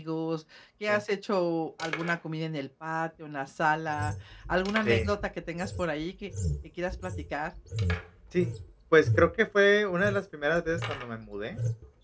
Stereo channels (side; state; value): both; identical; correlation 1.00